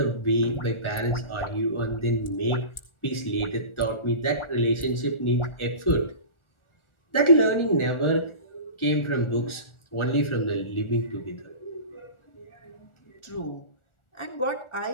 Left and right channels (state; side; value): late; right; 1.4 ms